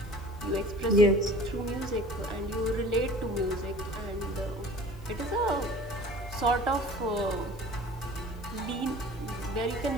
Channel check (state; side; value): normal; both; correlation 0.44